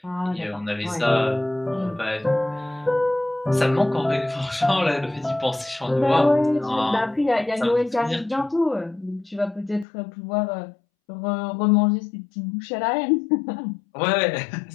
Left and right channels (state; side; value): drops out; right; at 9.9 s